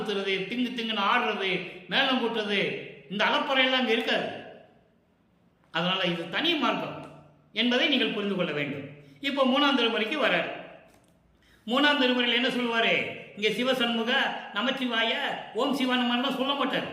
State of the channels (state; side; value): identical; both; correlation 1.00